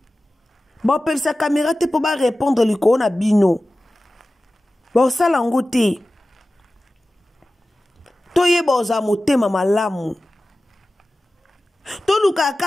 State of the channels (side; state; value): both; normal; correlation 0.95